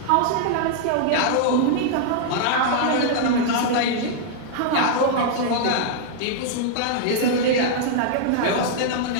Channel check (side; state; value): both; different; correlation -0.01